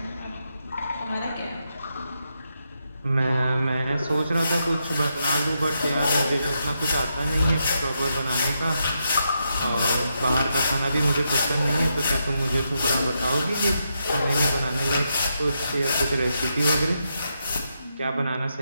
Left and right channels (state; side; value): inverted; both; correlation -0.83